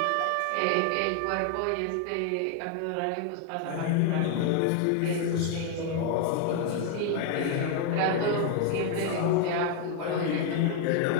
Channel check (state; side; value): different; both; correlation 0.00